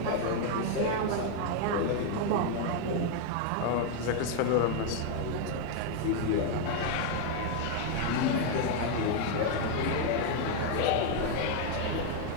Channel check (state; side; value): different; both; correlation 0.00